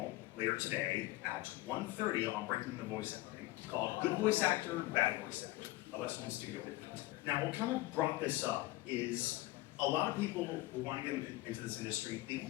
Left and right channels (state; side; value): quieter; right; 18.7 dB